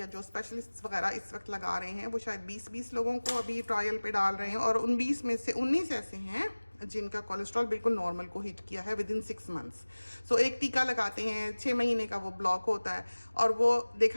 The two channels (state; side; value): inverted; both; correlation -1.00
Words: जो स्पेशलिस्ट वगैरह इस वक्त लगा रहे हैं वो शायद 20-20 लोगों को अभी ट्रायल पे डाल रहे हैं, और उन 20 में से 19 ऐसे हैं जिनका कोलेस्ट्रॉल बिल्कुल नॉर्मल को हिट किया है विदिन 6 मंथ्स। सो एक टीका लगाते हैं, 6 महीने का वो ब्लॉक होता है, और वो